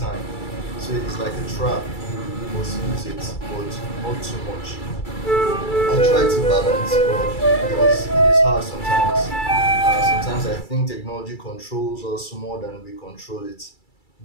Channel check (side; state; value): right; late; 2.3 ms